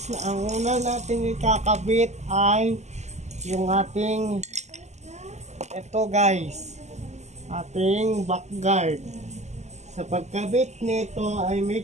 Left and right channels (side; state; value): left; late; 0.33 ms